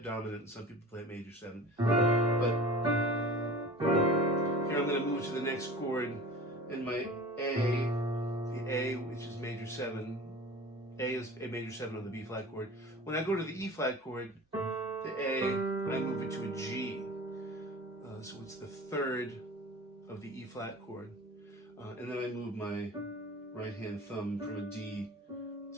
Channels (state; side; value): normal; both; correlation 0.39